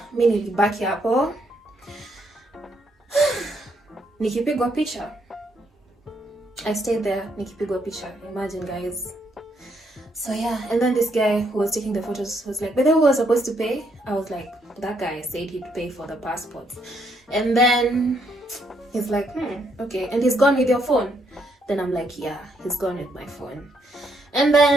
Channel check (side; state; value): both; normal; correlation 0.74